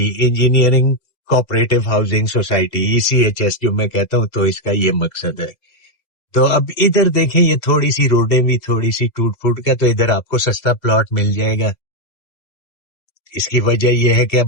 engineering cooperative housing society, ECHS जो मैं कहता हूँ, तो इसका ये मकसद है। तो अब इधर देखें, ये थोड़ी सी रोडें भी थोड़ी सी टूट फूट का, तो इधर आपको सस्ता प्लॉट मिल जाएगा। इसकी वजह यह है कि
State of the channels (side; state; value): right; late; 2.0 ms